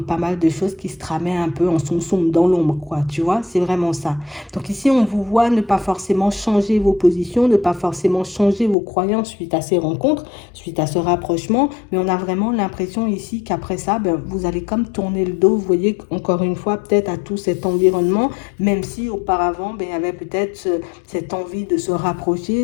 pas mal de choses qui se tramaient un peu en soum-soum, dans l'ombre, quoi, tu vois, c'est vraiment ça. Donc ici, on vous voit ne pas forcément changer vos positions, ne pas forcément changer vos croyances suite à ces rencontres, suite à ce rapprochement, mais on a vraiment l'impression ici qu'après ça, vous allez comme tourner le dos, vous voyez, encore une fois, peut-être à tout cet environnement, même si auparavant, il y avait peut-être cette envie de se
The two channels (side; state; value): right; drops out; at 8.8 s